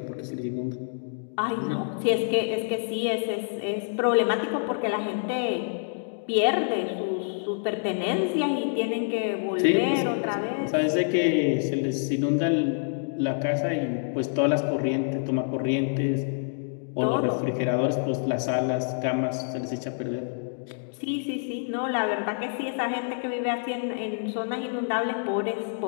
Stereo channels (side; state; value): right; silent; digital silence